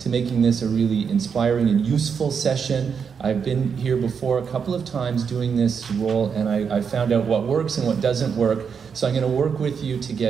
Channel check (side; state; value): left; quieter; 6.5 dB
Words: making this a really inspiring and useful session. I've been here before a couple of times doing this role, and I found out what works and what doesn't work. So I'm going to work with you to